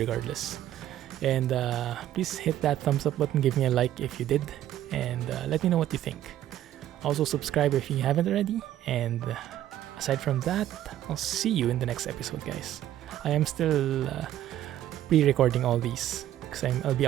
And please hit that thumbs up button. Give me a like if you did. And let me know what you think. Also subscribe if you haven't already. And aside from that, I'll see you in the next episode, guys. I am still pre-recording all these because I'll be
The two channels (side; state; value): left; quieter; 12.4 dB